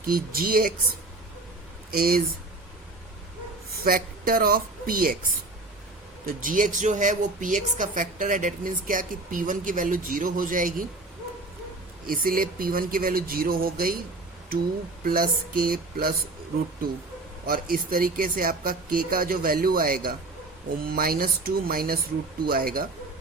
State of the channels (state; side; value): quieter; left; 3.2 dB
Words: कि gx is factor of px। तो gx जो है वो px का फैक्टर है। डेट मीन्स क्या कि p1 की वैल्यू 0 हो जाएगी, इसीलिए p1 की वैल्यू 0 हो गई, 2 प्लस k प्लस √2। और इस तरीके से आपका k का जो वैल्यू आएगा वो -2 माइनस √2 आएगा।